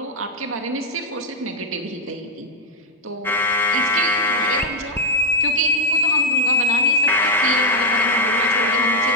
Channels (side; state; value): both; normal; correlation 0.00